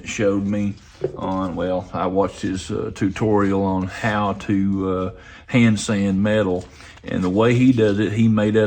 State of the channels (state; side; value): identical; both; correlation 1.00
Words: showed me on, well, I watched his tutorial on how to hand sand metal. And the way he does it, he made